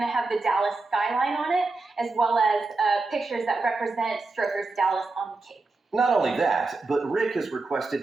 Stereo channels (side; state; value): left; quieter; 3.5 dB